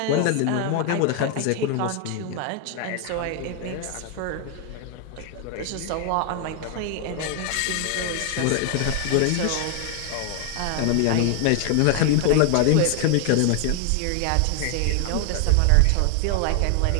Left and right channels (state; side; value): different; both; correlation 0.00